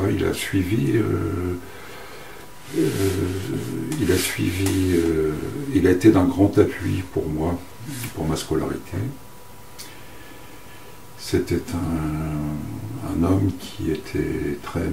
il a suivi, il a été d'un grand appui pour moi, pour ma scolarité. C'était un homme qui était très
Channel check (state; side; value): identical; both; correlation 1.00